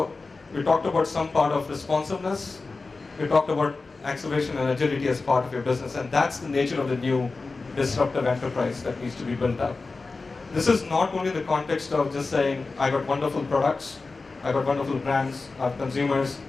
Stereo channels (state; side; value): quieter; right; 3.9 dB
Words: we talked about some part of responsiveness. We talked about acceleration and agility as part of your business, and that's the nature of the new disruptive enterprise that needs to be built up. This is not only the context of just saying, I got wonderful products, I got wonderful brands, I have consumers,